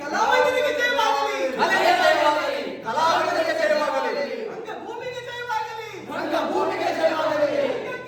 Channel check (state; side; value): identical; both; correlation 1.00